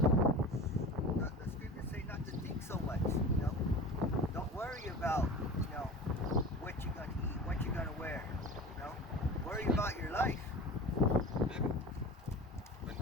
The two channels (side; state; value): both; normal; correlation 0.34